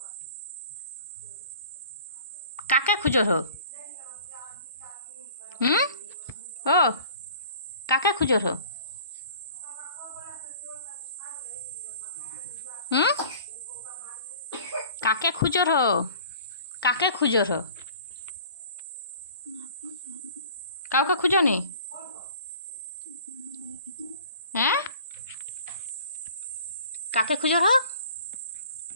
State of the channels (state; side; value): inverted; both; correlation -0.47